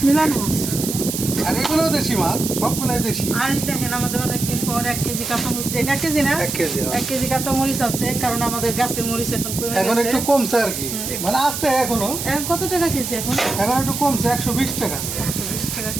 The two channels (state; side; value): noise; right; hiss, 5 dB below the sound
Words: মিলানো। আর এগুলো দেশি মাছ, সবগুলাই দেশি। আর দেখেন আমাদের অনেকদিন পর 1 কেজি কাঁচামরিচ, 1 কেজি না 1 কেজি কাঁচামরিচ আছে, কারণ আমাদের গাছের মরিচ এখন কমে গেছে, এখন একটু কমছে আর কি, মানে আছে এখনো। এখন কত টাকা কেজি? এখন একটু কমছে, 120 টাকা। 120 টাকা